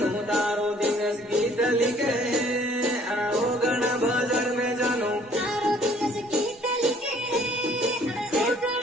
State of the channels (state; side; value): normal; both; correlation 0.58